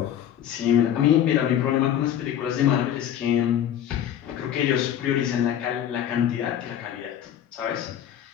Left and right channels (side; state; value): right; quieter; 10.4 dB